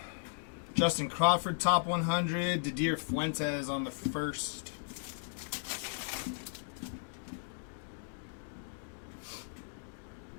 Justin Crawford, top 100. Didier Fuentes on the first.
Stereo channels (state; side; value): silent; right; digital silence